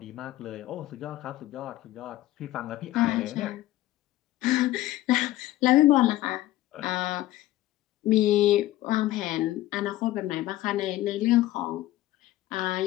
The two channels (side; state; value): right; quieter; 15.8 dB